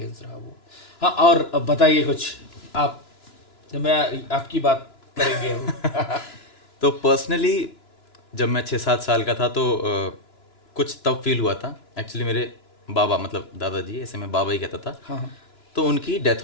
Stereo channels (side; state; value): right; late; 2.9 ms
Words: रहा वो। हाँ, और अब बताइए कुछ आप, मैं आपकी बात करेंगे अभी। तो पर्सनली जब मैं 6-7 साल का था तो कुछ तब फील हुआ था एक्चुअली। मेरे बाबा, मतलब दादाजी, ऐसे मैं बाबा ही कहता था, हाँ हाँ। तो उनकी डेथ